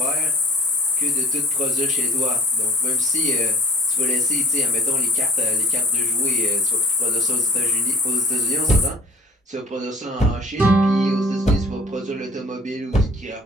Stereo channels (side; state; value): both; normal; correlation 0.47